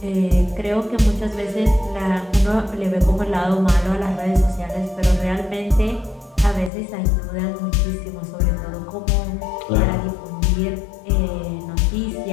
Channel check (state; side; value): drops out; right; at 6.7 s